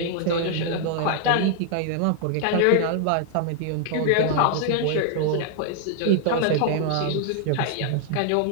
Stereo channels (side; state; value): both; different; correlation 0.00